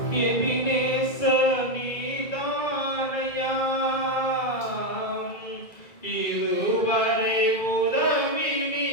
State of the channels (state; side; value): late; right; 1.9 ms